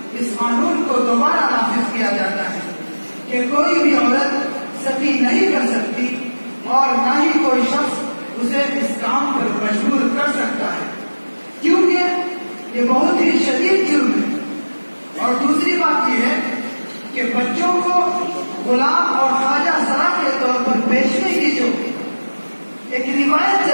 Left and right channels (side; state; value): both; inverted; correlation -1.00